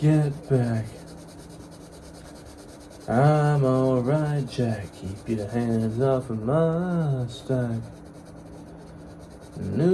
back. I'm alright, Jack. Keep your hands off of my stack.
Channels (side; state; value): both; identical; correlation 1.00